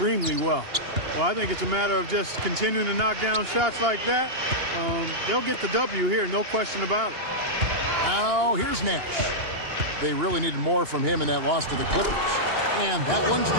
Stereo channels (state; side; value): late; left; 2.8 ms